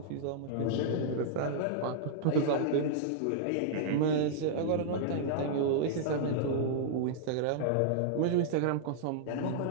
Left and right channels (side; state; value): both; different; correlation -0.02